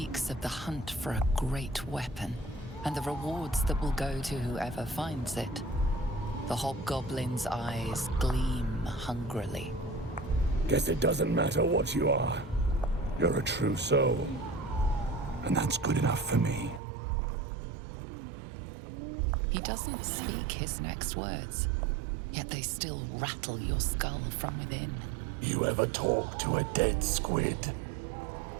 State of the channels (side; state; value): left; drops out; at 16.8 s